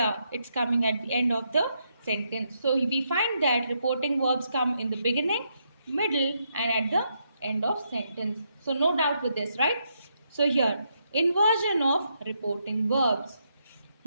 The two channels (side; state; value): both; inverted; correlation -0.79